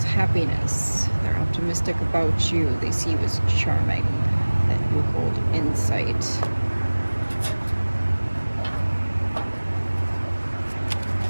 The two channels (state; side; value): inverted; both; correlation -1.00